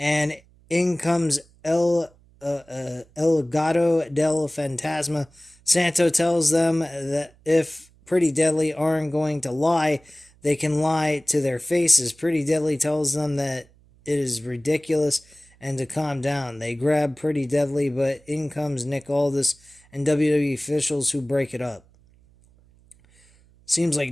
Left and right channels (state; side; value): noise; right; hum, 29 dB below the sound